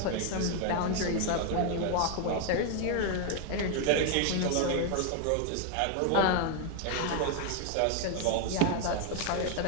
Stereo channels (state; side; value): different; both; correlation 0.01